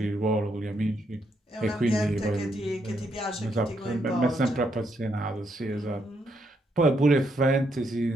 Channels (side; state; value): both; normal; correlation 0.77